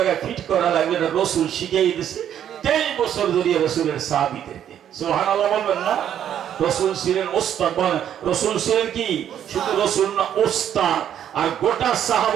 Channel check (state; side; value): quieter; left; 10.0 dB